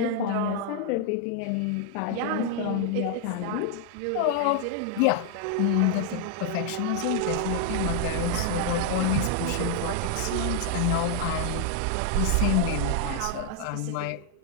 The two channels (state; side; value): different; both; correlation 0.00